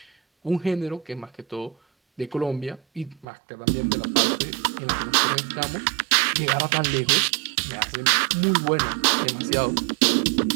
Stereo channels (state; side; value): drops out; left; at 3.2 s